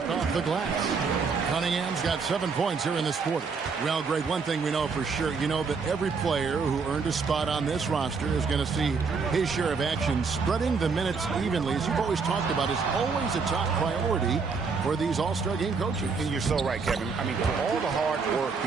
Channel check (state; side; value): quieter; left; 5.0 dB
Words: off the glass. Cunningham's got 7 points here in this quarter. Well, Greg, one thing we know for sure, you know that every player who earned a spot on this roster is going to see his share of action. Spreading the minutes evenly, as you've always talked about, is always a top priority for these All-Star game coaches. And you're so right, Kevin. I mean, for all the hard work